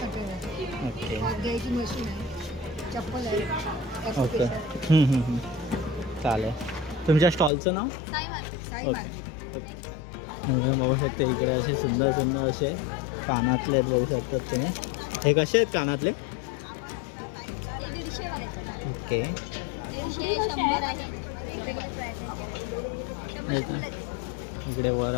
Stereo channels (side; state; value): right; drops out; at 7.5 s